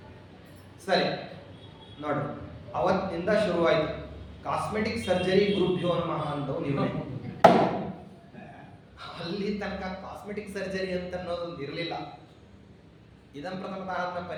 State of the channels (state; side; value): identical; both; correlation 1.00